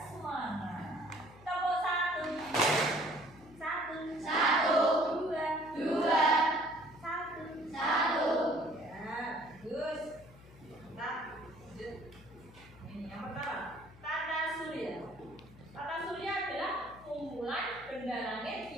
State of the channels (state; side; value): noise; left; hum, 21 dB below the sound